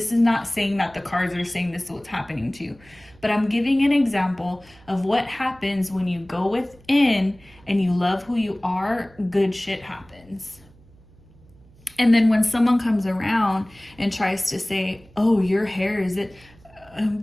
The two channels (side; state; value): right; noise; hum, 27 dB below the sound